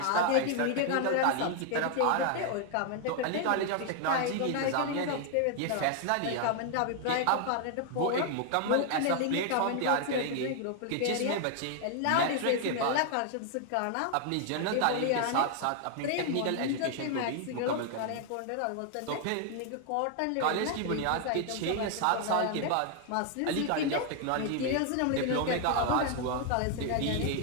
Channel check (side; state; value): both; different; correlation 0.00